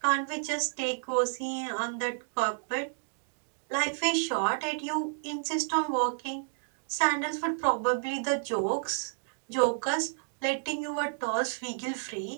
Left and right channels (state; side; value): silent; left; digital silence